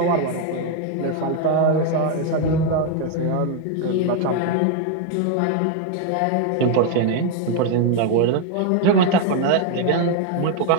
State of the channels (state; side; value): different; both; correlation 0.01